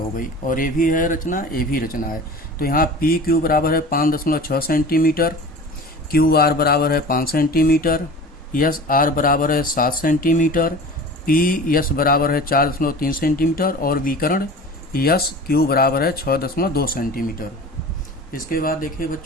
गई, और ये भी है रचना, ये भी रचना है। तो यहाँ पी क्यू बराबर है 5.6 सेंटीमीटर, क्यू आर बराबर है 5 सेंटीमीटर, यस आर बराबर है 7 सेंटीमीटर, पी यस बराबर है 4.3 सेंटीमीटर और विकर्ण यस क्यू बराबर है 6.2 सेंटीमीटर। इसके बाद देखिए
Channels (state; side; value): normal; both; correlation 0.38